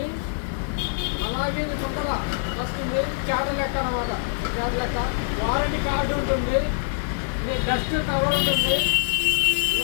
అలాగే చుట్టల వస్తుంది, చేట లెక్క అనమాట. చేట లెక్క వారంటీ కార్డు ఉంటుంది, ఇది డస్ట్ కవర్ ఉంటుంది,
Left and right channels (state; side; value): silent; right; digital silence